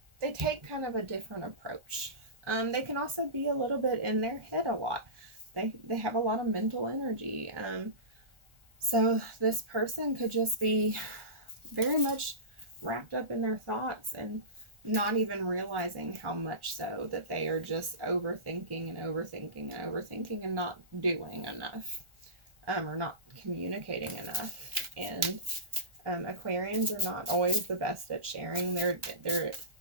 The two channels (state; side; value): late; left; 1.4 ms